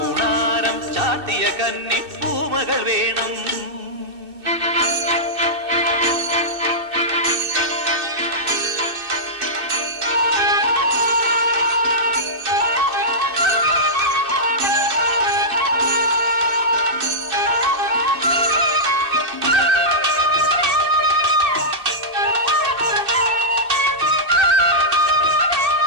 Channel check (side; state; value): left; late; 2.6 ms